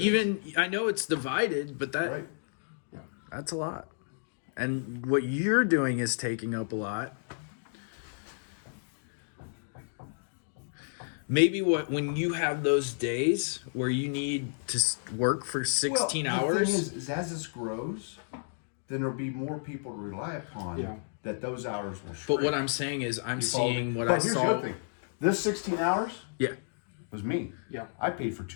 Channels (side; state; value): right; silent; digital silence